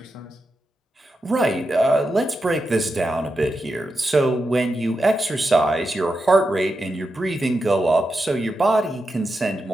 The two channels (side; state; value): both; normal; correlation 0.88